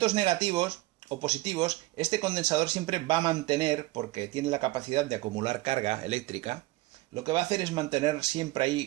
negativos o positivos, este condensador siempre va a mantener, porque tiene la capacidad de acumular carga eléctrica, lo que va a hacer es mantener siempre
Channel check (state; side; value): quieter; left; 19.3 dB